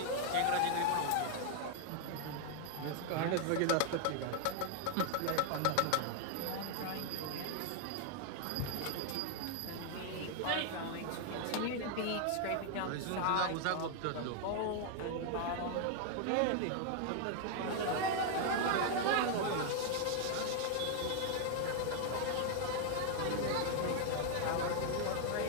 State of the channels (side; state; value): both; different; correlation 0.00